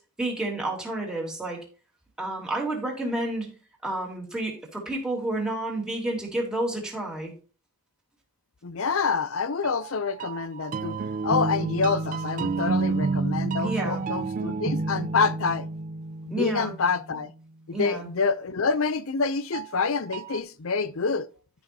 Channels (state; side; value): normal; both; correlation 0.07